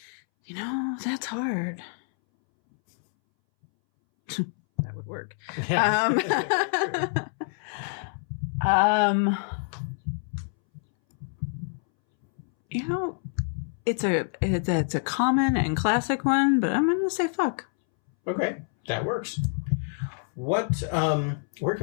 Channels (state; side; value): silent; right; 60 dB below the other